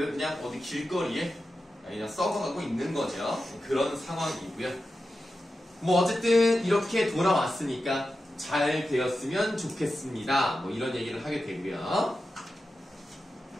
그냥 어디 길거리에 그냥 썩어가고 있는 거죠. 그런 상황이고요. 뭐 어쨌든 이렇게 돌아왔으니까 잘 되었으면 좋겠습니다. 뭐 이런 얘기를 하게 되고요.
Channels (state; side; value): normal; both; correlation 0.91